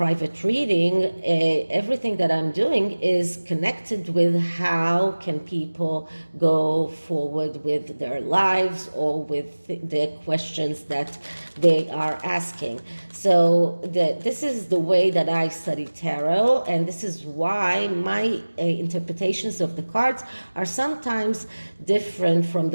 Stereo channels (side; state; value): both; inverted; correlation -1.00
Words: reading, everything that I'm doing is connected with how can people go forward with their lives or with the questions that they are asking. So this is the way that I study tarot, and this is why my interpretations of the cards are sometimes different from